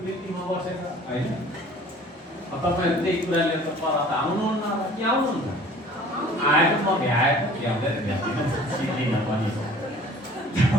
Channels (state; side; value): normal; both; correlation 0.49